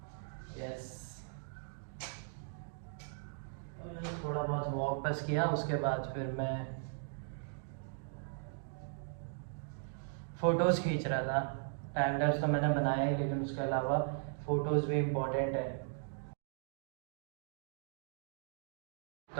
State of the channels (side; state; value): left; silent; digital silence